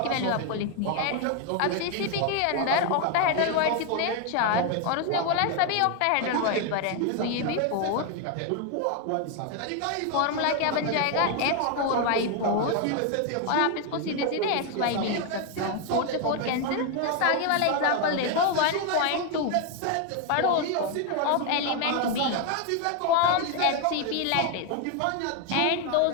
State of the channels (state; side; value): different; both; correlation 0.01